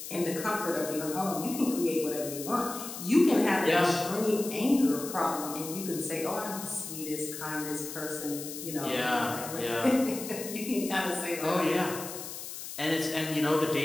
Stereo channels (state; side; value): noise; left; hiss, 9 dB below the sound